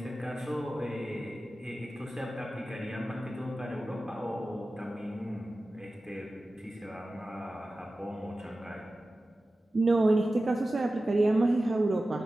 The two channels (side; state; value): both; normal; correlation 0.95